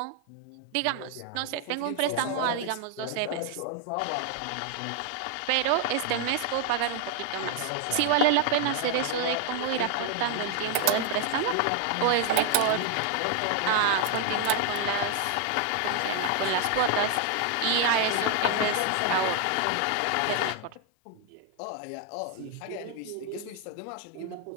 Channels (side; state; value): both; different; correlation 0.00